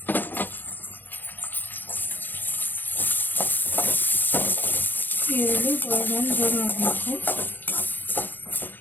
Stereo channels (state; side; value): late; right; 0.090 ms